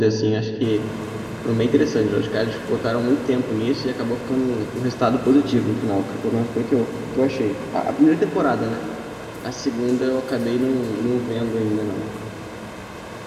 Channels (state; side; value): identical; both; correlation 1.00